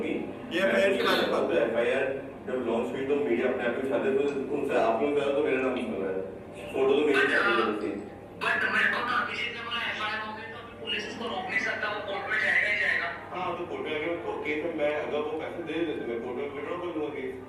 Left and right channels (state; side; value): identical; both; correlation 1.00